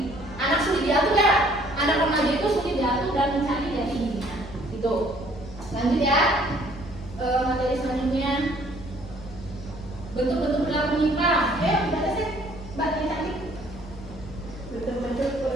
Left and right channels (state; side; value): noise; left; hum, 16 dB below the sound